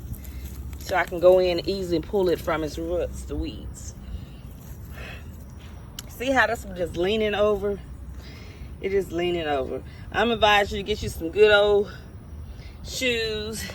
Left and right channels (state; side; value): identical; both; correlation 1.00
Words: So I can go in and easily pull it from its roots, the weeds. See how this one just leaning over? It is leaning over. I'm advising you to get you some good old shoes.